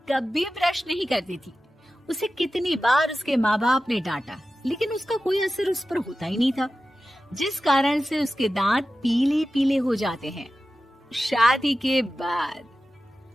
कभी ब्रश नहीं करती थी। उसे कितनी बार उसके माँ बाप ने डांटा, लेकिन उसका कोई असर उस पर होता ही नहीं था, जिस कारण से उसके दांत पीले पीले हो जाते हैं। शादी के बाद।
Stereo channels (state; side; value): normal; both; correlation 0.94